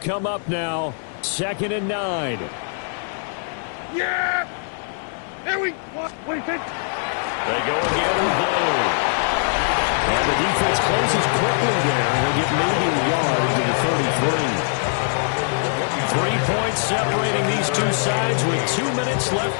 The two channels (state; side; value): silent; right; 60 dB below the other